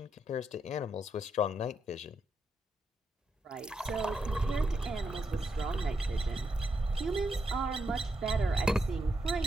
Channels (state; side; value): normal; both; correlation 0.82